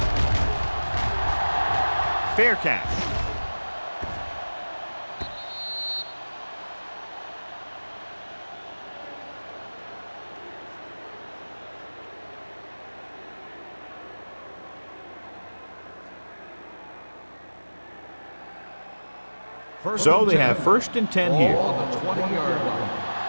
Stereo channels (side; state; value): both; inverted; correlation -1.00